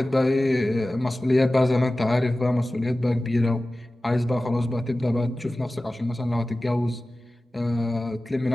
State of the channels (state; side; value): normal; both; correlation 0.96